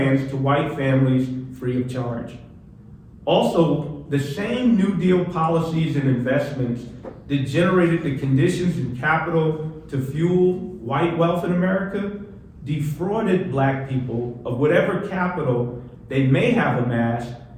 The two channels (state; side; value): identical; both; correlation 1.00